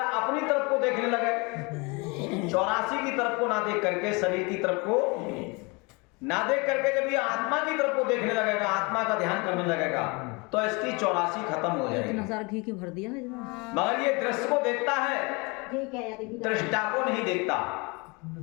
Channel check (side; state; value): right; quieter; 28.4 dB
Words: अपनी तरफ को देखने लगे, 84 की तरफ को ना देख करके, शरीर की तरफ को ना देख करके जब ये आत्मा की तरफ को देखने लगेगा, आत्मा का ध्यान करने लगेगा, तो इसकी 84 खत्म हो जाएगी। घी की भर दिया है, मगर ये दृश्य को देखता है, दृष्टा को नहीं देखता।